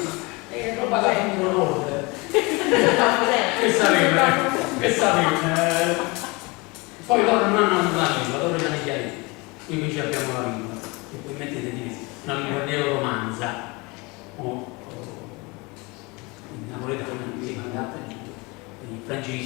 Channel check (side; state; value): right; quieter; 26.2 dB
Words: è roba che non conosce. Che sapete? Poi loro non hanno la lingua, loro hanno i chiaretti, noi invece abbiamo la lingua, e poi mettete di una lingua neoromanza. In napoletano si manda il